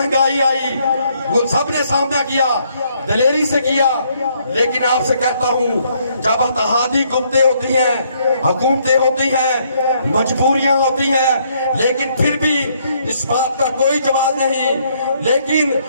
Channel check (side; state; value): both; inverted; correlation -0.70